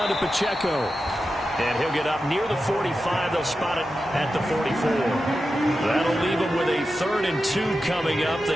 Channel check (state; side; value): normal; both; correlation 0.91